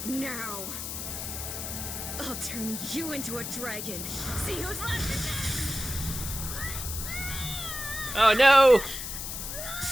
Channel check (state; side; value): noise; left; hiss, 6 dB below the sound